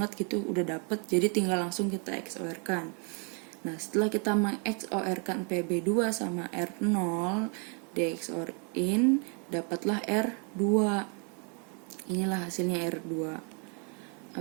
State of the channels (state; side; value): quieter; left; 37.8 dB